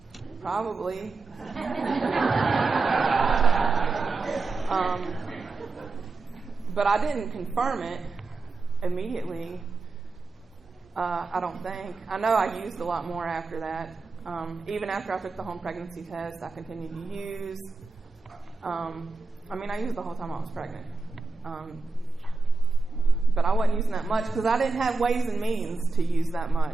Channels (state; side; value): quieter; left; 3.9 dB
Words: probably. But I didn't confirm it immediately, I don't think. I know I used a lot more after that. Even after I took the home pregnancy test, I continued to use. I used the whole time I was pregnant. But I wasn't using that much because I didn't have ways and means to use that